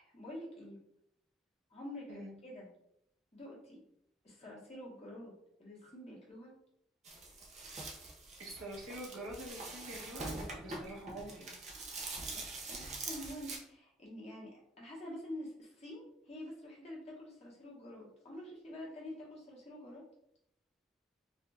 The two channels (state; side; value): normal; both; correlation 0.55